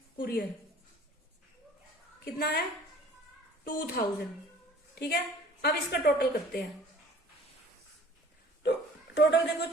कुरियर, कितना है 2,000, ठीक है। अब इसका टोटल करते हैं, तो टोटल देखो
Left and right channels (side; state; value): both; normal; correlation 0.50